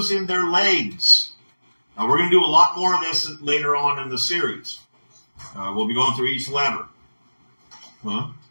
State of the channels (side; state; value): both; inverted; correlation -1.00